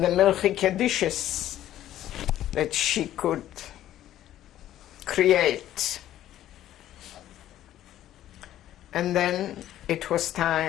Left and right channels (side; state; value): right; quieter; 12.6 dB